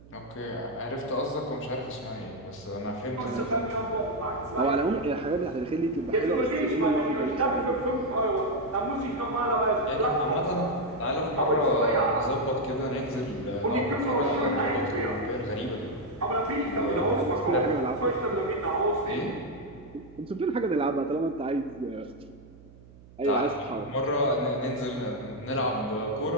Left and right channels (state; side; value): noise; right; hum, 22 dB below the sound